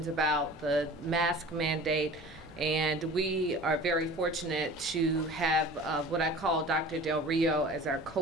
about the mask mandate, and we are very fortunate to have what I call Dr. Del Rio as our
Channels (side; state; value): both; normal; correlation 0.41